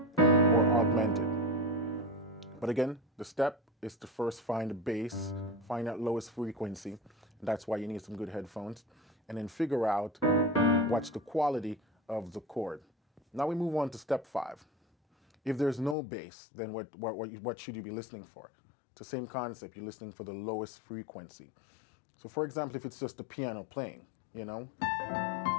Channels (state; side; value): drops out; right; at 16.0 s